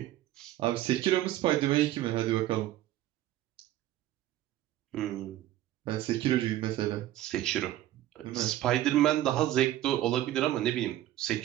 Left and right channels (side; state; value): left; quieter; 14.1 dB